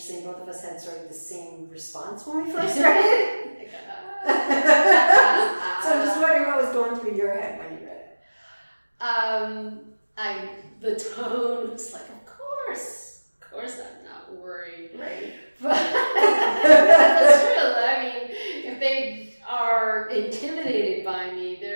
Both of us had sort of the same response when we first read it. So I'm just wondering what was going through your head when you read it. The tone was like, of course I'm not worried. Right. But that's true. I mean, if they are intimidated by me,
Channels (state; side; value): inverted; both; correlation -1.00